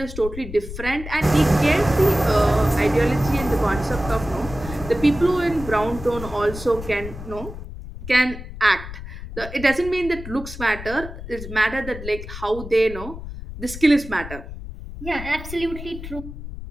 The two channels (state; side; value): noise; left; rumble, 11 dB below the sound